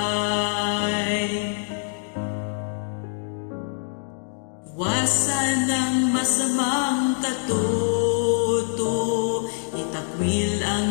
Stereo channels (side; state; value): right; silent; 62 dB below the other